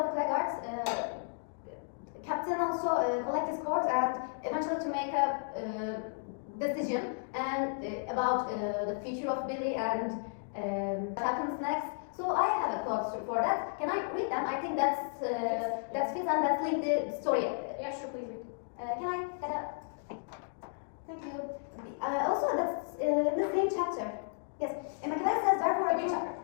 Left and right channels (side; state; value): right; silent; digital silence